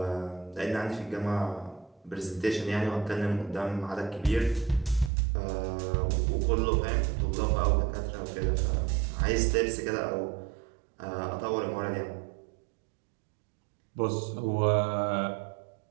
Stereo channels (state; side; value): drops out; left; at 5.1 s